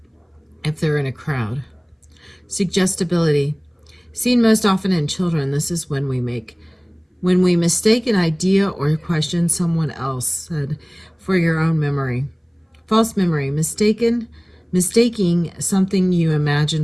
if they're in a crowd. Suggestibility. Seen most often in children, this is when we mistake an idea or question someone else said for your own memory. False memory. Mistaking something you imagine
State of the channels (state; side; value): identical; both; correlation 1.00